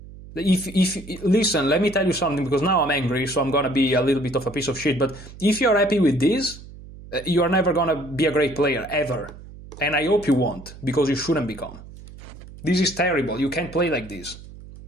If listen, let me tell you something, because now I'm angry, so I'm gonna be a little bit of a piece of shit. But if you're happy with this, you are never gonna be a great player ever, and I hope you won't, because you shouldn't become. This is terrible. You can't play like this.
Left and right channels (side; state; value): right; noise; hum, 17 dB below the sound